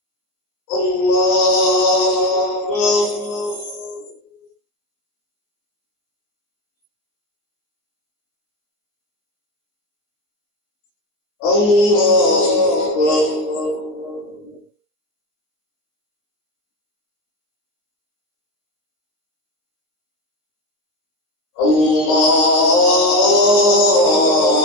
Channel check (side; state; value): right; late; 19 ms